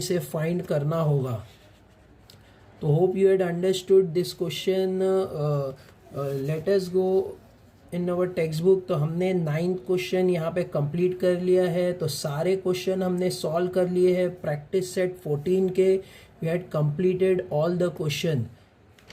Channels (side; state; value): both; identical; correlation 1.00